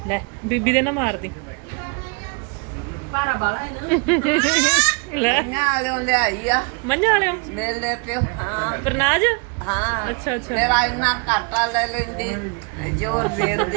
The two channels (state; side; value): quieter; left; 34.2 dB